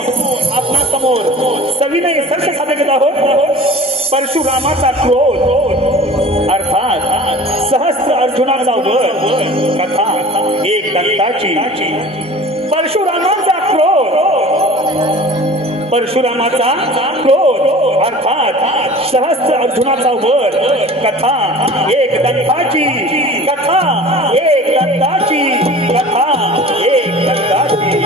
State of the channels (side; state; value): both; normal; correlation 0.41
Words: आपणा समोर सविनय सर्च सादर घेत आहोत। परशुरामाचा क्रोध अर्थात सहस्त्र अर्जुनाचा वध कथा एक दंताची। परशुरामाचा क्रोध अर्थात सहस्त्र अर्जुनाचा वध कथा एक दंताची। कथा एक दंताची। कथा एक दंताची।